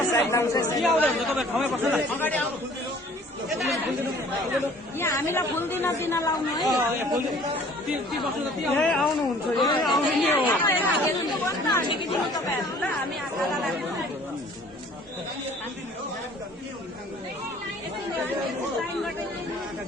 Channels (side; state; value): both; normal; correlation 0.53